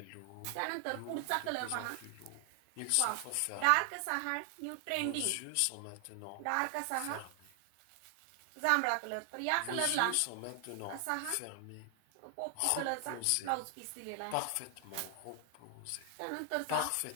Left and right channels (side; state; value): both; different; correlation 0.00